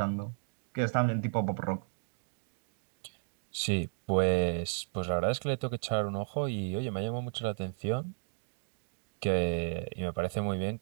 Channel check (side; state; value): left; silent; digital silence